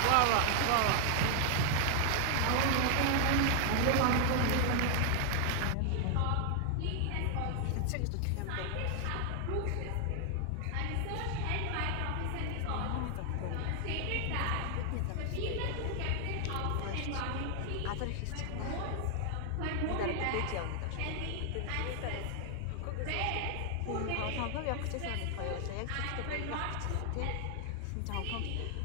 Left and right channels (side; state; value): both; different; correlation 0.00